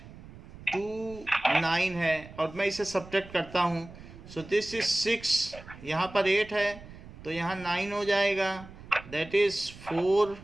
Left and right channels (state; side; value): noise; right; rumble, 17 dB below the sound